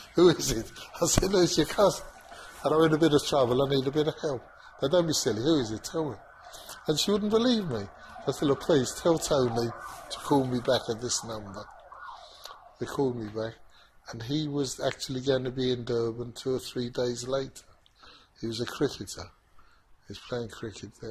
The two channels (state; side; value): identical; both; correlation 1.00